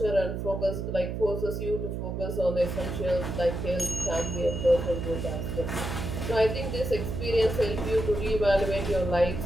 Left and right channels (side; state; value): right; noise; hum, 4 dB below the sound